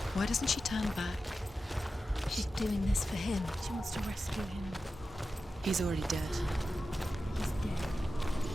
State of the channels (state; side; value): normal; both; correlation 0.92